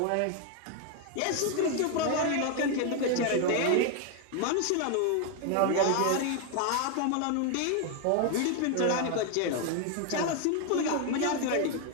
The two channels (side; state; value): both; different; correlation 0.01